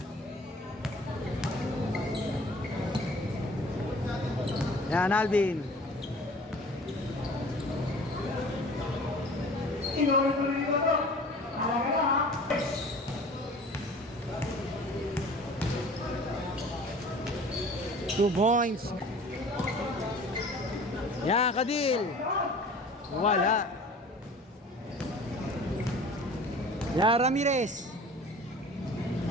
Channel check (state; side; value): normal; both; correlation 0.45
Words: Yan, Alvin. Two points. Yan, Kadil. Wala. Yan, Ramirez.